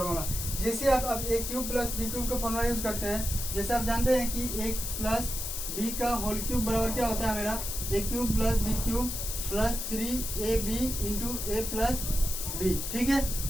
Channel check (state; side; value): noise; left; hiss, 4 dB below the sound